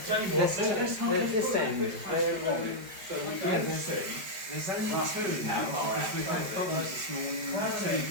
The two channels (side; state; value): left; late; 5.3 ms